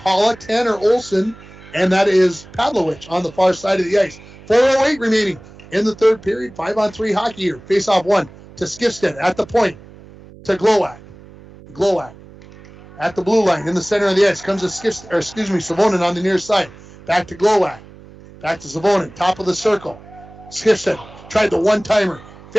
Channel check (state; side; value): noise; right; hum, 21 dB below the sound